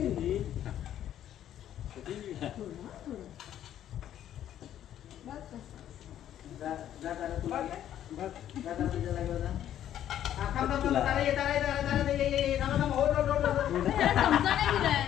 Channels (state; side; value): quieter; right; 11.1 dB